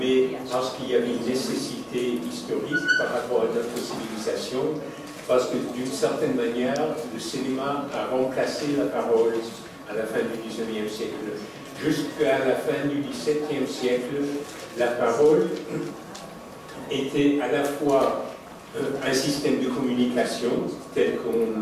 parce qu'il y avait une nécessité historique par rapport à notre civilisation, parce que d'une certaine manière, le cinéma a remplacé la parole à la fin du XIXe siècle. Jusqu'à la fin du XVIIe siècle, la parole était à la fois un système de communication tel qu'on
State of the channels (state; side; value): identical; both; correlation 1.00